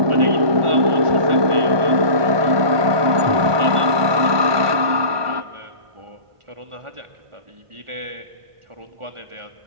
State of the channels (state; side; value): late; left; 1.2 ms